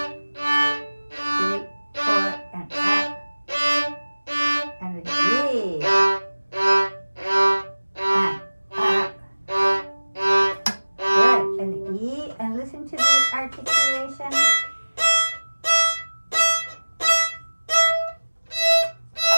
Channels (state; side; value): inverted; both; correlation -1.00